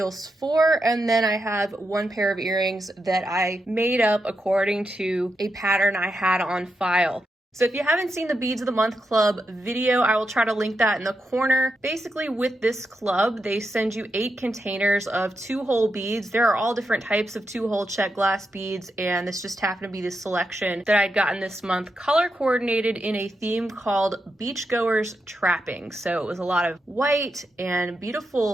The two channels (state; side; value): normal; both; correlation 0.85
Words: for, and then I have one pair of earrings that I made up according to a pattern I had on file. So if you haven't seen the Beads of the Month Club video, I will try to link that in the corner. Basically, with this club, they send you 8 containers of 2-hole beads. There are all different types of 2-hole check glass beads, and this just happened to be the selection that I'd gotten this month, color coordinated in a theme called Beachgoers Trapping. So it was a lot of white and